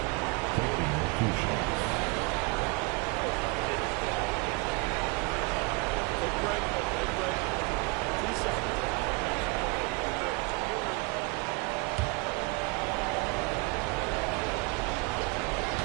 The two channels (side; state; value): left; quieter; 27.8 dB